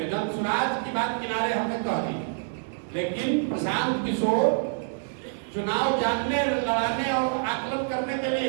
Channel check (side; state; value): left; silent; digital silence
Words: जब स्वराज की बात किनारे हमने कह दी, लेकिन प्रशांत किशोर चुनाव जानने, लड़ाने और आकलन करने के